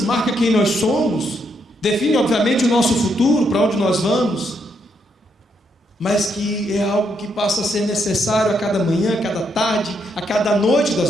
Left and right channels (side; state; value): both; normal; correlation 0.76